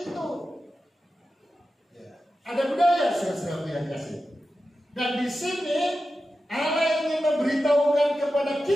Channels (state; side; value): normal; both; correlation 0.92